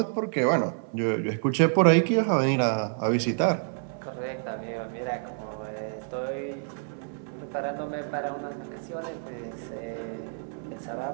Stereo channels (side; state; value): left; silent; 59 dB below the other